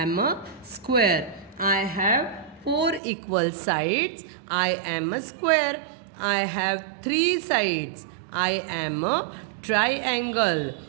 a square. I have 4 equal sides. I am a square. I have 3 sides. I am a triangle.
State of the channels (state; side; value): drops out; left; at 3.0 s